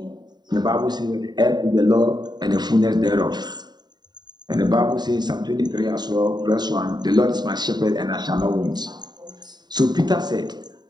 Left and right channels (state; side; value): late; left; 0.20 ms